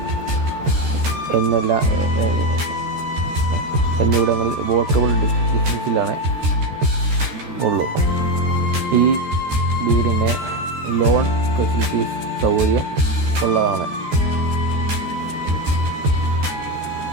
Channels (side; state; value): left; late; 14 ms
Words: എന്നിവിടങ്ങളിൽ വോക്കബിൾ ഡിസ്റ്റൻസിലാണ് ഉള്ളൂ. ഈ വീടിന് ലോൺ ഫെസിലിറ്റീസ് സൗകര്യം ഉള്ളതാണ്.